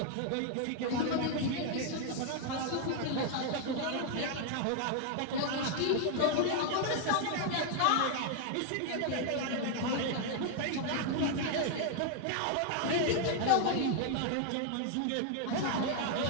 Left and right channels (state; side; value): different; both; correlation 0.00